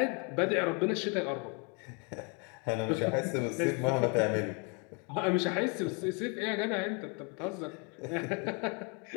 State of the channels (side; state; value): right; quieter; 34.4 dB